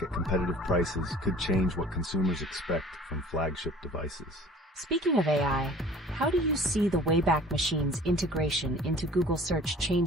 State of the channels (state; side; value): normal; both; correlation 0.47